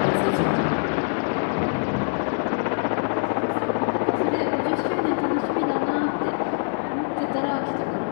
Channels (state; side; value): silent; right; 62 dB below the other